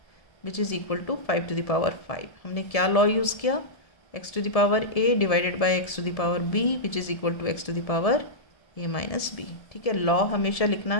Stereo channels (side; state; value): right; late; 1.7 ms